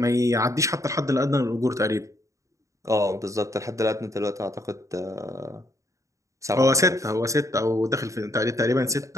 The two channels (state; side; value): late; left; 0.15 ms